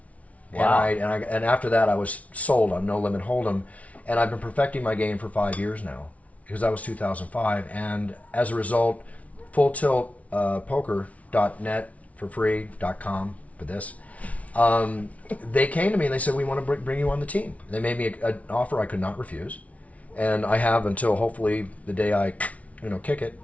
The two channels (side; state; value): right; late; 0.067 ms